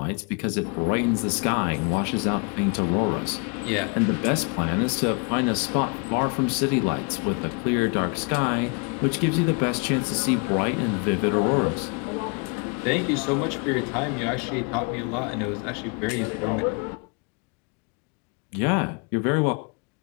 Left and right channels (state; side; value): quieter; right; 33.8 dB